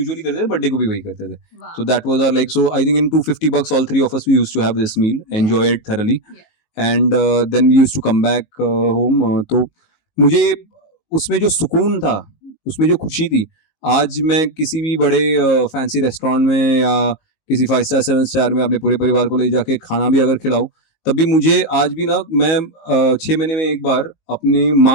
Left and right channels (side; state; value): right; late; 19 ms